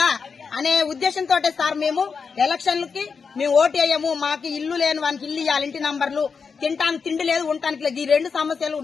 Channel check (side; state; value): right; quieter; 5.5 dB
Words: అనే ఉద్దేశంతో సార్ మేము ఎలక్షన్లకి మేము ఓటు వేయము. మాకు ఇల్లు లేని వానికి ఇల్లు ఇవ్వాలి, ఇంటి నంబర్లు, తినటానికి తిండి లేదు, ఉండటానికి లేదు. ఈ 2 సమస్యలు